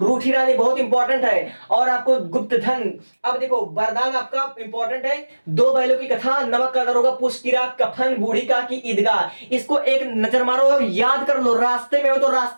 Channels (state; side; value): inverted; both; correlation -1.00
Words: रूठी रानी बहुत इंपॉर्टेंट है। और आपको गुप्त धन। अब देखो वरदान आपका इंपॉर्टेंट है, दो बैलों की कथा, नमक का दरोगा, पुष्ट की रात, कफन, बूढ़ी का की ईदगाह। इसको एक नजर मारो और याद कर लो, रास्ते में हो तो